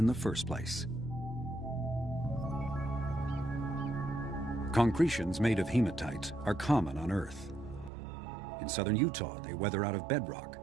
the first place. Concretions made of hematite are common on Earth. In southern Utah, they weather out of bedrock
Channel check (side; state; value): left; drops out; at 7.9 s